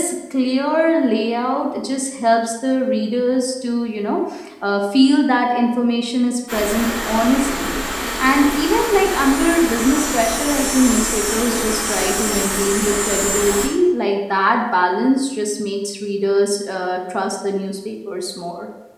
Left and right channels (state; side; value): identical; both; correlation 1.00